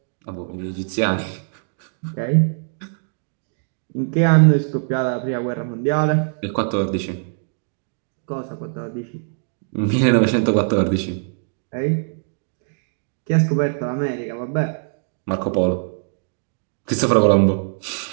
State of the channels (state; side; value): silent; left; 64 dB below the other